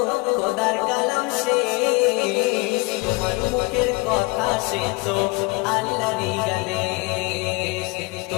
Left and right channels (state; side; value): quieter; right; 25.8 dB